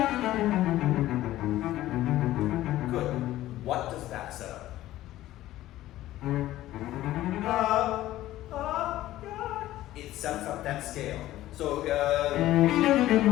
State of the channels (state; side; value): quieter; right; 14.9 dB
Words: Good. What does that set up? It sets up that scale. So,